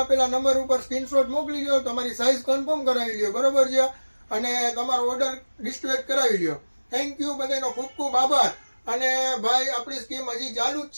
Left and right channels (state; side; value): inverted; both; correlation -1.00